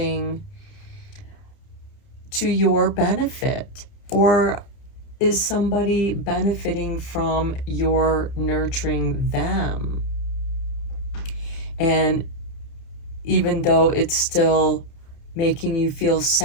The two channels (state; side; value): late; right; 30 ms